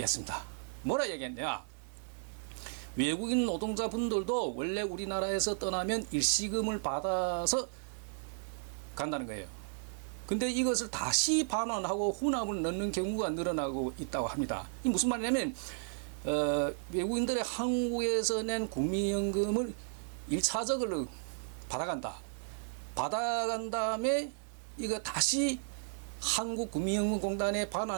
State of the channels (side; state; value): left; silent; digital silence